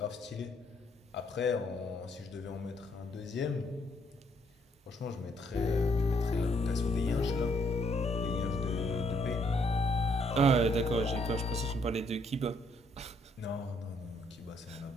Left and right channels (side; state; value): both; normal; correlation 0.70